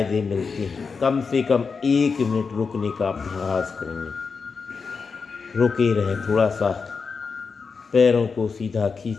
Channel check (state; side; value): quieter; right; 5.2 dB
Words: मिलते हैं, कम से कम 1 मिनट रुकने का अभ्यास करेंगे। रुके रहे, थोड़ा सा पैरों को सीधा